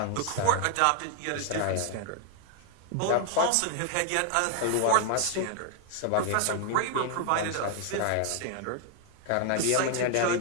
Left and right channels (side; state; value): both; different; correlation 0.00